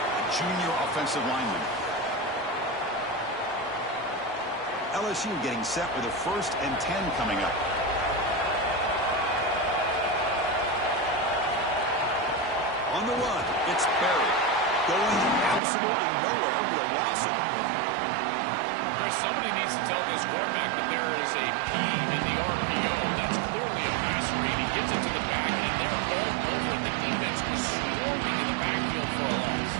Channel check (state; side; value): drops out; left; at 15.6 s